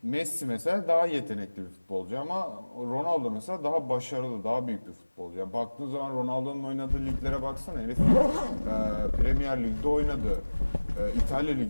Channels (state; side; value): inverted; both; correlation -1.00